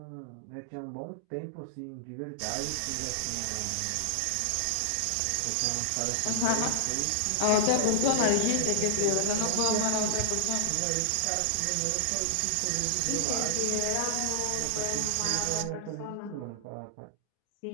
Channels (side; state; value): both; different; correlation -0.01